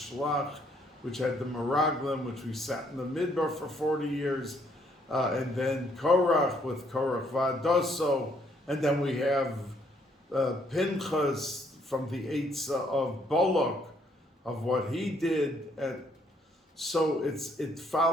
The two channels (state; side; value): normal; both; correlation 0.68